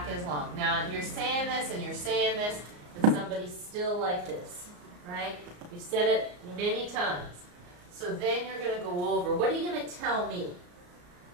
is long. Now you're saying this and you're saying this, and somebody's still like this, right? You've said it many times. So then you're going to go over. What are you going to tell me?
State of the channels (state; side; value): late; left; 34 ms